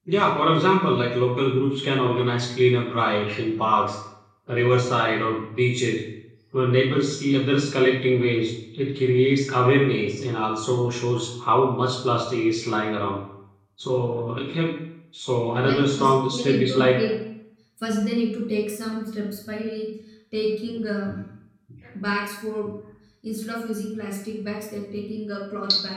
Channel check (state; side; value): identical; both; correlation 1.00